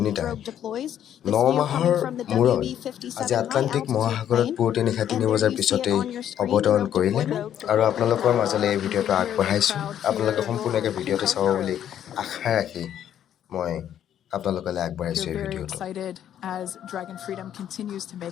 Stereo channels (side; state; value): right; quieter; 10.3 dB